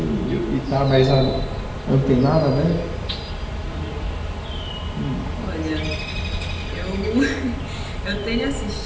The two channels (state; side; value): identical; both; correlation 1.00